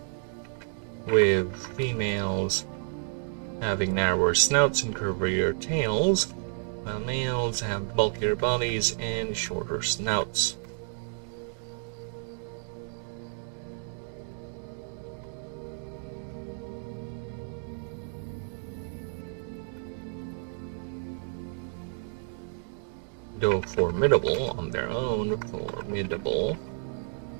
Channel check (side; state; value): left; silent; 58 dB below the other